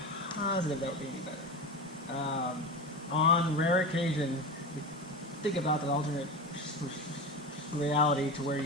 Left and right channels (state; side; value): normal; both; correlation 0.24